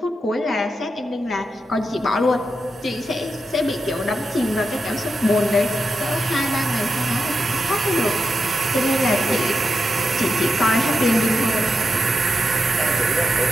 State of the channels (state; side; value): normal; both; correlation 0.87